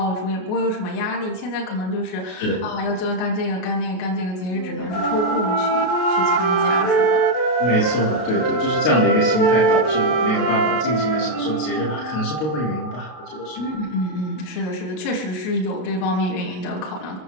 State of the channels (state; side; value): late; right; 32 ms